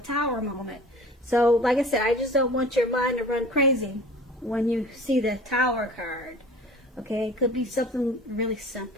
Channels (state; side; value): normal; both; correlation 0.43